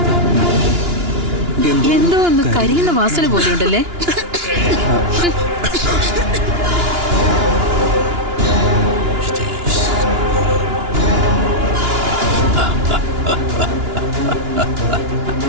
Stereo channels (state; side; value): late; left; 2.9 ms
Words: എന്തോ ഒന്ന് കരിയുന്ന വാസന പോലെ ഉണ്ടല്ലേ?